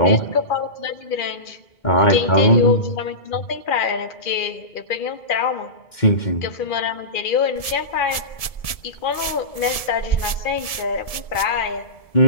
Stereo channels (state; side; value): late; right; 1.7 ms